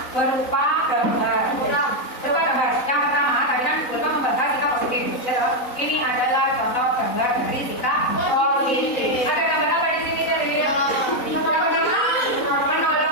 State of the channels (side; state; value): right; late; 3.9 ms